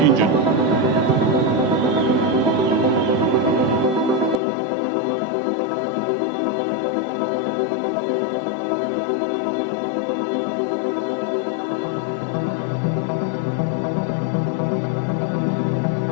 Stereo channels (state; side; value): drops out; right; at 4.4 s